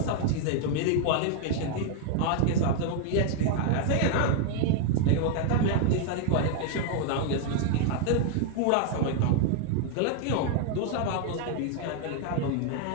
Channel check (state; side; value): different; both; correlation 0.00